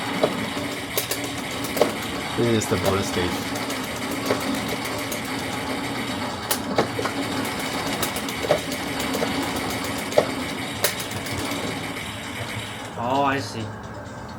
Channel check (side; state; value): both; identical; correlation 1.00